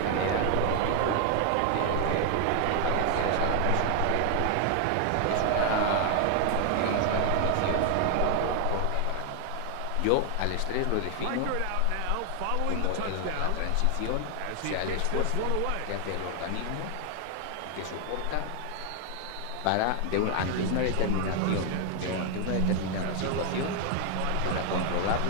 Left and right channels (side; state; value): both; different; correlation 0.00